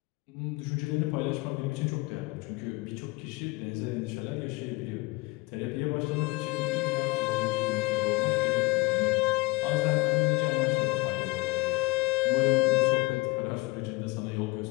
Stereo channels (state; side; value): quieter; right; 23.6 dB